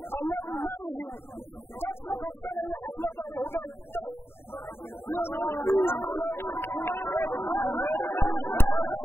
annagu ma yihiin dad ku qabsanaya xafladooda hudheel dhexdii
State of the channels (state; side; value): late; right; 0.11 ms